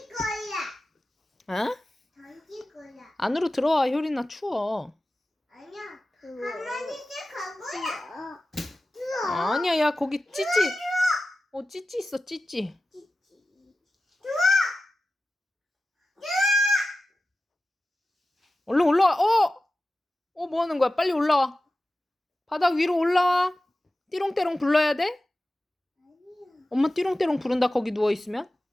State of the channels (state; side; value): normal; both; correlation 0.95